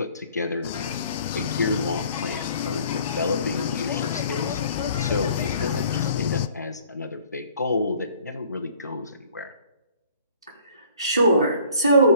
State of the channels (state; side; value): inverted; both; correlation -0.55